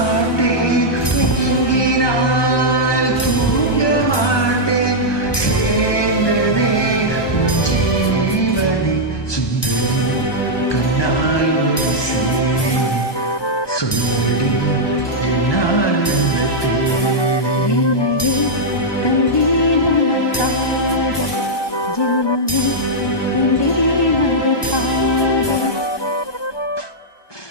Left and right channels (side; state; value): right; late; 1.2 ms